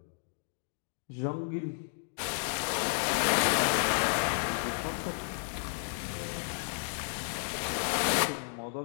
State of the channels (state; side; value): silent; right; digital silence